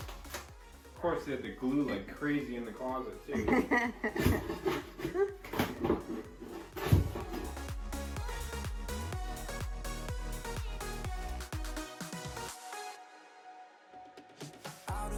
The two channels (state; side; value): identical; both; correlation 1.00